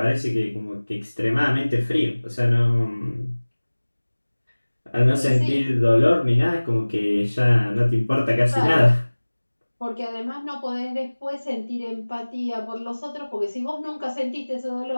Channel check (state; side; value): inverted; both; correlation -1.00